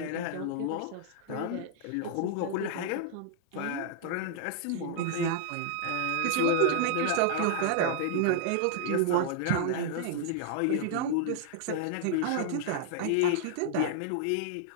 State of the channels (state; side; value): different; both; correlation -0.01